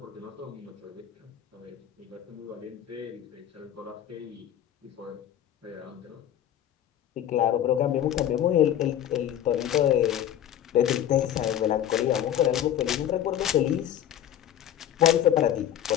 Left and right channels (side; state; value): right; quieter; 10.8 dB